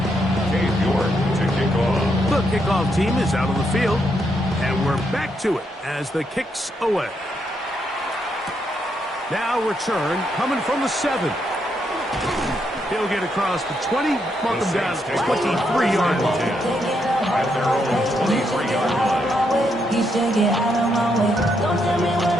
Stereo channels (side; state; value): both; normal; correlation 0.78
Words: The kickoff team is out on the field, and we're back to it as the kicks away. Now return coming from the 7. He'll get across the 20, mark him down at the 23-yard line. At their own 23-yard line. You should get out of my way. Don't tell me what